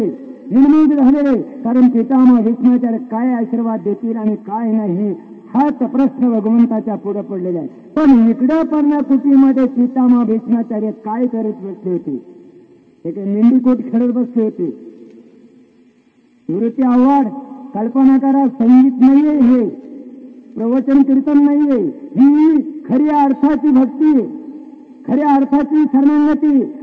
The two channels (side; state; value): both; identical; correlation 1.00